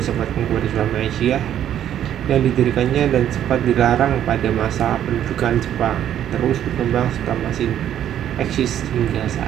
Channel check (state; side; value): quieter; left; 10.7 dB